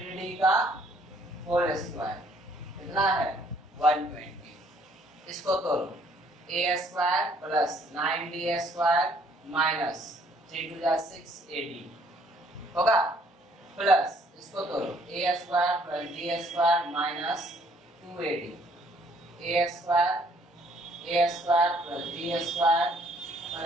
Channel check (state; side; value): normal; both; correlation 0.63